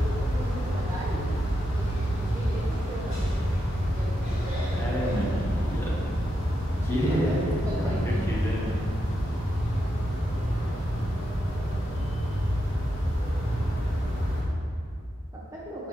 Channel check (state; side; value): normal; both; correlation 0.86